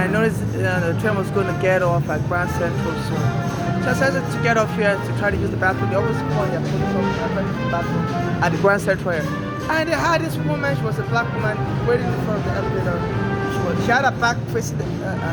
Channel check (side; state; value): both; identical; correlation 1.00